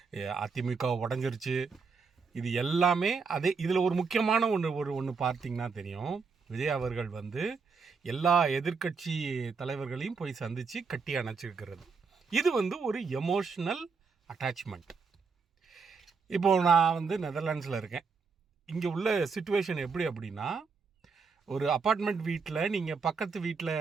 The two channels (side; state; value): left; quieter; 5.1 dB